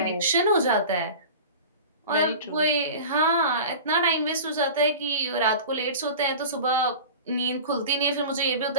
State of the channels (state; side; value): inverted; both; correlation -0.35